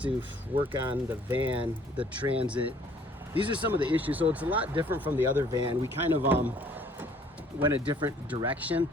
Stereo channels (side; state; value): both; normal; correlation 0.58